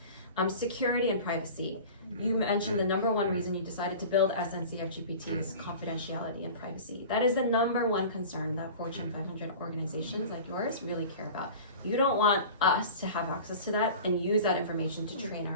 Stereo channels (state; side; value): inverted; both; correlation -0.38